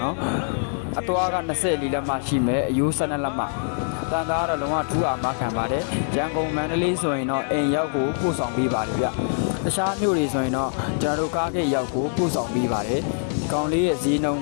နော်အသွားက24လက်မှရှိမယ်အယိုး12လက်မှတန်သားတော့လုံးဝထူးအောင်မခံပါတယ်ရန်ကုန်မန္တလေးဆိုရင်တော့အိမ်ရောက်ကိုပို့ဆောင်ပေးပါလိမ့်ဗျတခြားမြို့တွေဆိုရင်တော့ကျွန်တော်တို့ကားဂိတ်ရောက်ကိုပို့ဆောင်ပေးပါတယ်ကောင်လေးရဲ့ဈေးနှုန်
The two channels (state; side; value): silent; right; digital silence